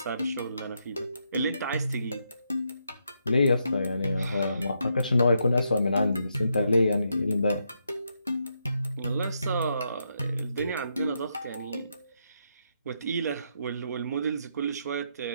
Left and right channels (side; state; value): both; inverted; correlation -0.80